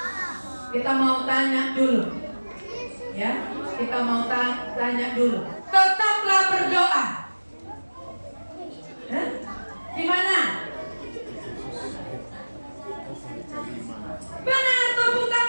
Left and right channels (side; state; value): both; inverted; correlation -1.00